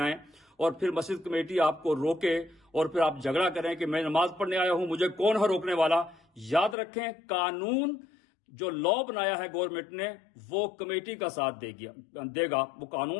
اور پھر مسجد کمیٹی آپ کو روکے اور پھر آپ جھگڑا کریں کہ میں نماز پڑھنے آیا ہوں، مجھے کون ہے روکنے والا. یاد رکھیں، قانون جو لا بنایا ہے گورنمنٹ نے وہ کمیٹی کا ساتھ دے گا. وہ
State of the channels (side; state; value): right; drops out; at 6.8 s